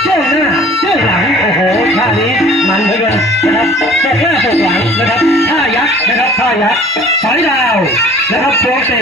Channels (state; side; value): normal; both; correlation 0.49